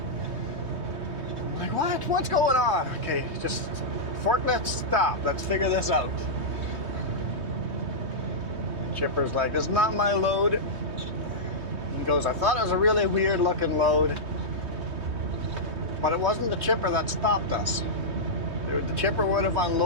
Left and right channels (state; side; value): late; left; 3.2 ms